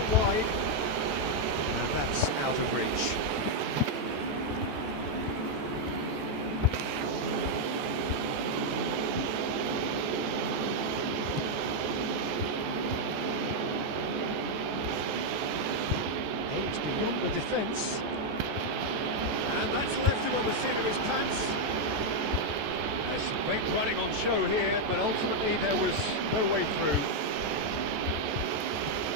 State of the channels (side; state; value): left; late; 14 ms